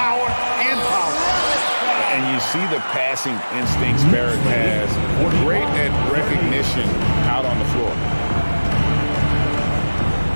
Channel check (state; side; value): inverted; both; correlation -1.00